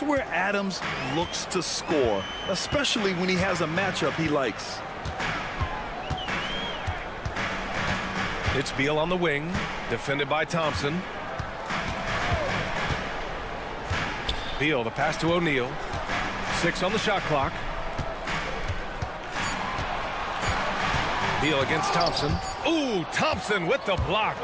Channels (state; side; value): identical; both; correlation 1.00